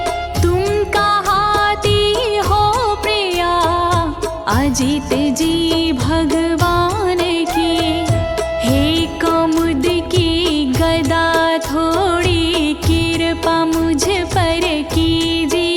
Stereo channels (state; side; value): identical; both; correlation 1.00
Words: तुम कहाती हो प्रिया अजित जी भगवान की। हे कमुद की गदा थोड़ी कृपा मुझ पर